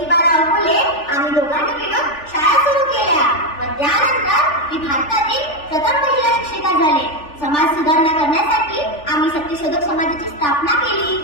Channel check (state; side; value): late; right; 3.4 ms